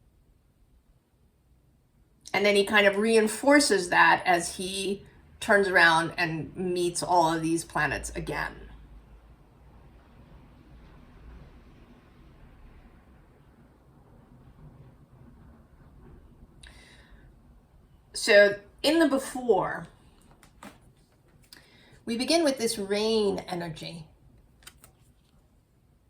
And then he kind of reinforces that as he turns around and meets all of these planets again. So in the before, we begin with this rain energy.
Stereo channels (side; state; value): both; identical; correlation 1.00